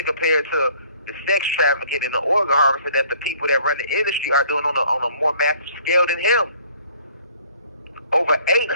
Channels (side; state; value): both; inverted; correlation -0.57